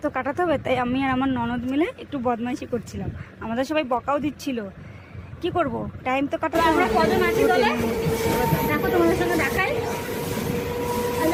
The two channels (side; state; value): both; identical; correlation 1.00